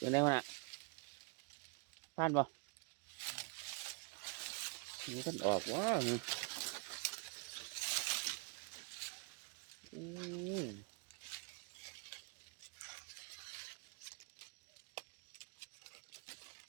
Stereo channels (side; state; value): left; quieter; 35.6 dB